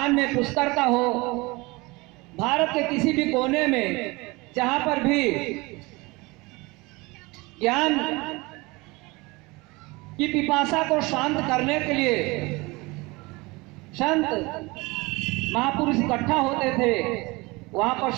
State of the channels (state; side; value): quieter; left; 23.9 dB